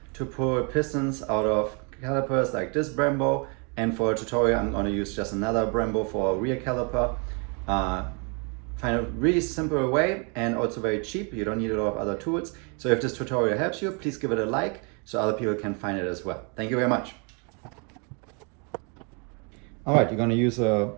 to pull pistons out of calipers like this Brembo. And for a tutorial, I'm going to use just another Brembo for a rear caliper. Find a really simple way and also very cheap. You don't need a lot of other tools. So if this tutorial helps you, please give it a like so other people can find it as well. Thank you very much. All right, you're going to use a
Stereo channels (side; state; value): left; quieter; 35.5 dB